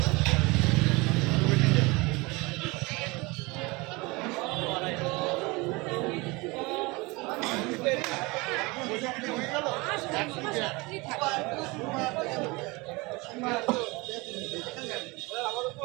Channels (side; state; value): left; quieter; 24.9 dB